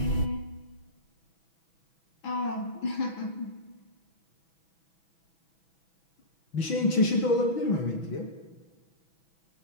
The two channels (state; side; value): late; right; 6.1 ms